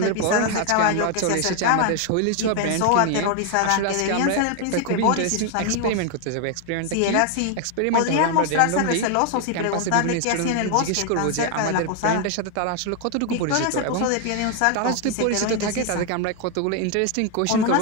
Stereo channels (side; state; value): both; different; correlation 0.01